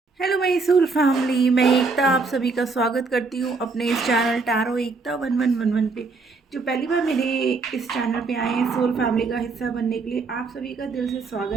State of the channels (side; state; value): left; quieter; 4.2 dB